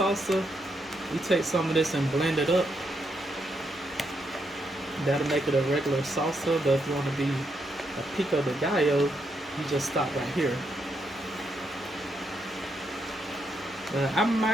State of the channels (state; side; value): normal; both; correlation 0.79